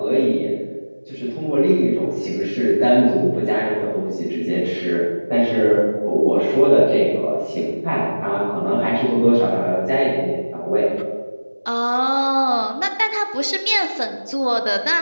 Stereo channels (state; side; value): inverted; both; correlation -1.00